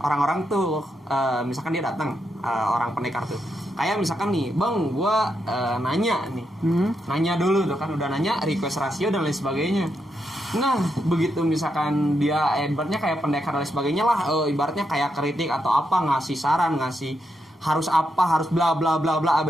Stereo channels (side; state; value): both; normal; correlation 0.82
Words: orang-orang tuh misalkan dia datang orang pendekar tuh. Kayak misalkan nih, "Bang, gua nanya nih." Nanya dulu tuh kan udah nanya request rasio dan lain sebagainya. Nah, begitu misalkan dia ibaratnya kayak pendekar dan lain sebagainya lah, ibaratnya kayak kritik atau apa, ngasih saran, ngasih harus apa, harus bla bla bla bla